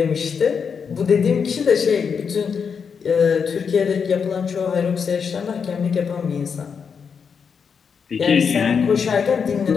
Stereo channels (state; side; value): quieter; right; 6.3 dB